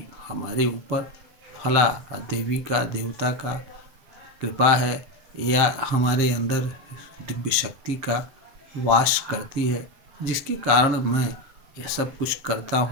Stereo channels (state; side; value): late; left; 7.6 ms